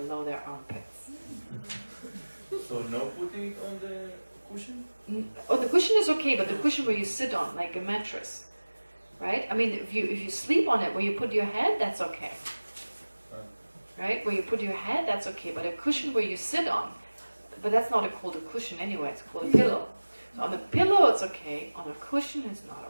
their armpits. So no putting it on the cushion? Oh, the cushion is okay, but the cushion where you sit on, like a mattress. Right? I mean, if you sleep on it where you put your head, that's okay. Right? Where you put your head, that's okay. But a cushion where you sit on, but that's not called a cushion anyway, it's called a pillow. So on the pillow it's okay, on a cushion it's not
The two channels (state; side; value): inverted; both; correlation -1.00